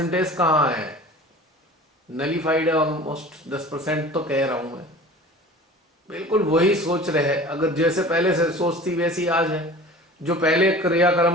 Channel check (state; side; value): normal; both; correlation 0.41